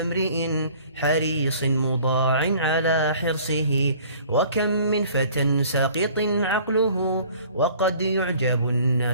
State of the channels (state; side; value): inverted; both; correlation -0.52